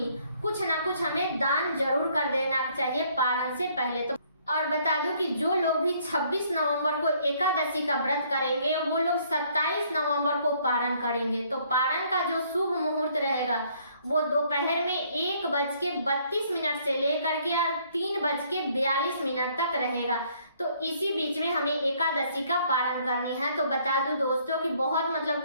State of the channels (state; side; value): inverted; both; correlation -0.64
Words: कुछ ना कुछ हमें दान जरूर कर देना चाहिए पारण से पहले। तो और बता दूं कि जो लोग भी 26 नवंबर को एकादशी का व्रत करेंगे, वो लोग 27 नवंबर को पारण करेंगे। तो पारण का जो शुभ मुहूर्त रहेगा वो दोपहर में 1:32 से लेकर के 3:42 तक रहेगा। तो इसी बीच में हमें एकादशी का पारण करनी है। तो बता दूं दोस्तों कि बहुत मतलब